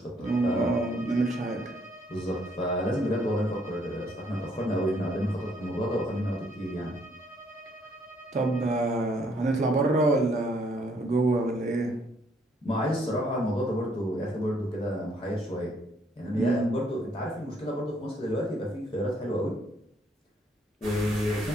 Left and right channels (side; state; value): both; normal; correlation 0.68